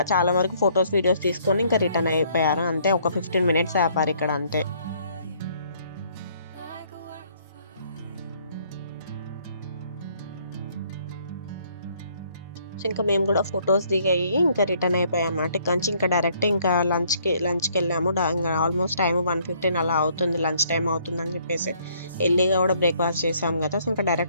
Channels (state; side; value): inverted; both; correlation -0.64